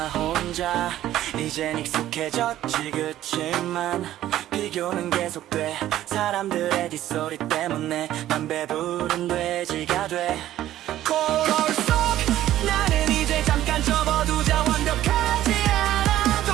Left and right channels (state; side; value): quieter; left; 13.3 dB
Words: 혼자. 이젠 익숙해졌지. 그치만 비교는 계속돼. 사람들의 뒷소리 때문에 난 배부른 돼지가 돼. 거울 속 나는 이제 잠깐 접어두자. 완벽하지